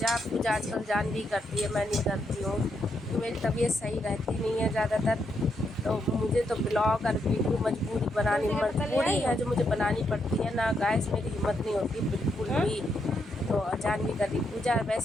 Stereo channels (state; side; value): normal; both; correlation 0.79